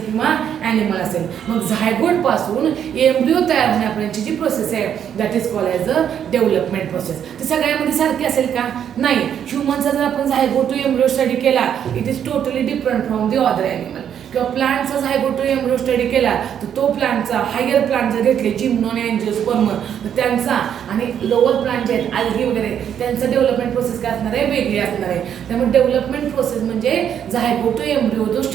किंवा ॲनिमल असेल. मग झायगोटपासून एम्ब्रिओ तयार होण्यापर्यंतची जी प्रोसेस आहे that is called as a development process. ती सगळ्यामध्ये सारखी असेल का? नाही. ह्युमनचा जर आपण झायगोट टू एम्ब्रिओ स्टडी केला it is totally different from the other animal. किंवा प्लांटचा झायगोट टू एम्ब्रिओ स्टडी केला तर तो प्लांटचा हायर प्लांट जर घेतले जिम्नोन, अँजिओस्पर्म, तर त्यांचा आणि लोअर प्लांट जे आहेत अल्गी वगैरे त्यांचं डेव्हलपमेंट प्रोसेस काय असणार आहे? वेगळी असणार आहे. त्यामुळे डेव्हलपमेंट प्रोसेस म्हणजे झायगोट टू एम्ब्रिओ जो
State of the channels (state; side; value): quieter; left; 9.0 dB